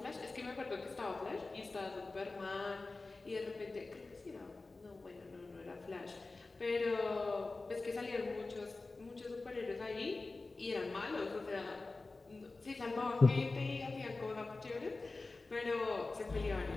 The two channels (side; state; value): right; quieter; 3.5 dB